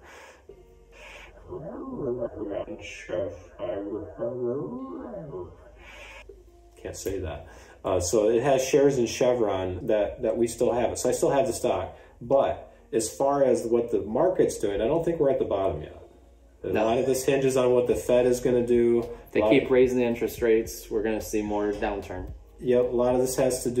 Can't say that. So it has shares in Chevron that we still have it. So I still have the stock. But as far as what the market's doing, I don't think we're at the bottom yet. A lot of this hinges on what the Fed is going to do. If they keep raising the interest rates, we're going to see more downturn. Yep, a lot of this has to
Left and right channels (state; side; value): identical; both; correlation 1.00